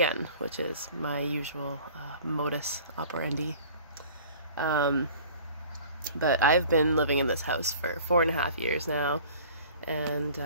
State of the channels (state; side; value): inverted; both; correlation -0.47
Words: which is my usual modus operandi. But I've been living in this house for 4.5 years now, and